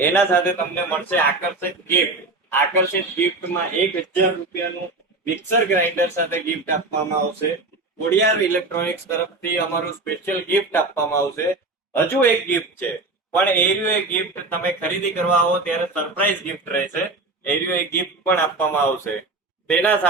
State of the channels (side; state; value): left; quieter; 3.3 dB